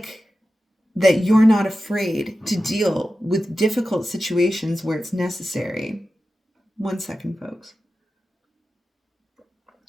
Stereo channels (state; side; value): normal; both; correlation 0.93